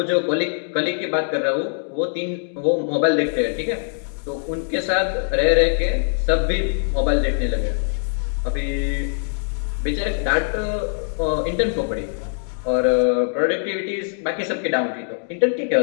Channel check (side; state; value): right; silent; digital silence